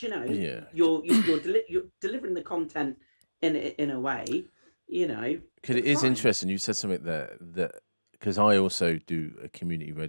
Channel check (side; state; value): both; inverted; correlation -1.00